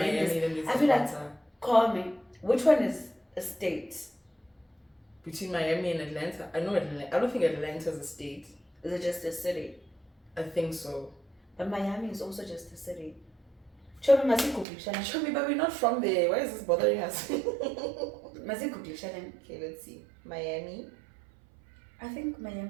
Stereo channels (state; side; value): drops out; left; at 14.7 s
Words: and I feel like, call me. Which one is a state? Between Miami and Atlanta. I know Atlanta. I don't think Atlanta's a state. Is it just a city? I think so. But Miami is also just a city. Show me, but we're not from there. Why is this bothering us? Okay, let's see. Miami. I think